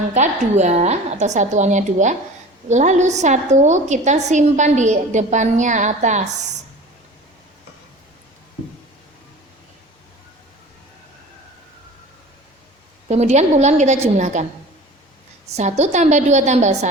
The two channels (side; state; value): both; normal; correlation 0.40